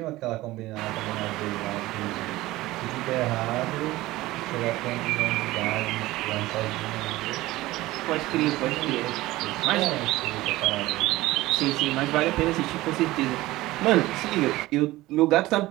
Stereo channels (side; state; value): left; quieter; 18.0 dB